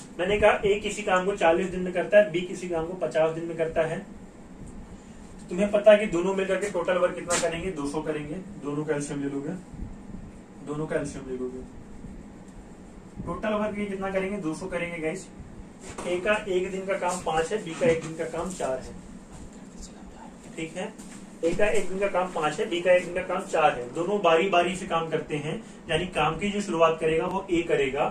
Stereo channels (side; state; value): both; identical; correlation 1.00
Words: मैंने कहा ए किसी काम को 40 दिन में करता है, बी किसी काम को 50 दिन में करता है। तुम्हें पता है कि दोनों मिलकर के टोटल वर्क कितना करेंगे? 200 करेंगे। दोनों का एलसीएम ले लोगे, दोनों का एलसीएम ले लोगे, टोटल वर्क ये कितना करेंगे? 200 करेंगे गाइस। ए का 1 दिन का काम 5 है, बी का 1 दिन का काम 4 है। ठीक है। ए का 1 दिन का काम 5 है, बी का 1 दिन का काम 4 है। दोनों बारी बारी से काम करते हैं, यानी काम की जो शुरुआत करेगा वो ए करेगा